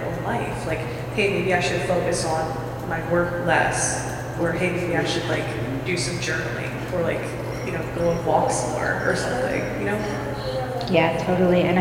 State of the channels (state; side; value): identical; both; correlation 1.00